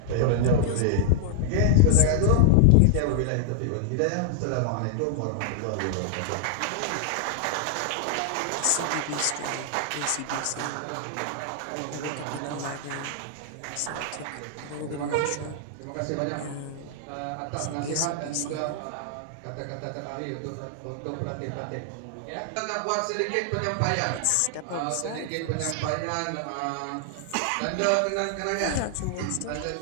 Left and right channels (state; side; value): different; both; correlation 0.00